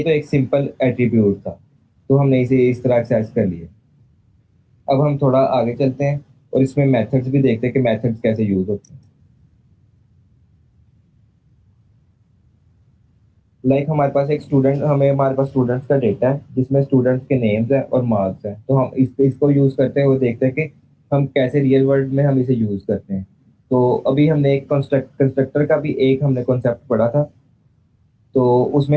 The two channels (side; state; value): both; identical; correlation 1.00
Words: तो एक सिंपल एट्रीब्यूट था, तो हमने इसे इस तरह एक्सेस कर लिया। अब हम थोड़ा आगे चलते हैं और इसमें मेथड्स भी देखते हैं कि मेथड्स कैसे यूज होते हैं। लाइक हमारे पास स्टूडेंट्स का डेटा है जिसमें स्टूडेंट्स के नेम्स हैं और मार्क्स हैं। तो हम इसको यूज करते हुए देखते हैं कि हम कैसे रियल वर्ल्ड में हम इसे यूज करते हैं। तो अभी हमने एक कंस्ट्रक्टर का भी एक हमने कॉन्सेप्ट पढ़ा था। तो उसमें